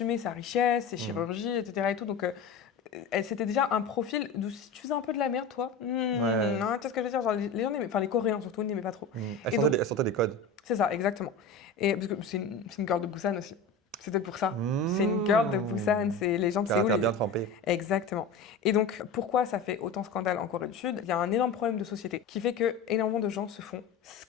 sa richesse, ses chirurgies, etc. Et tout. Donc, c'était déjà un profil d'où si tu faisais un peu de la merde, toi, tu sais ce que je veux dire, genre, les gens les Coréens surtout n'aimaient pas trop. Elle sortait des codes. C'est ça, exactement. Et parce que c'est une girl de Busan aussi. C'était pour ça. C'est une girl de Busan, c'est les gens de Séoul. Bien trempé. Exactement. Et donc, pourquoi ça fait autant scandale en Corée du Sud ? Il y a un énorme problème de société qui fait que énormément de gens se font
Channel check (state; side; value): quieter; right; 4.3 dB